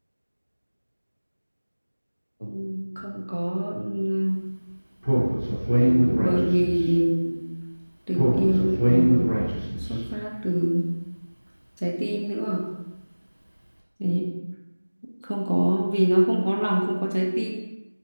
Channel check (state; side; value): inverted; both; correlation -1.00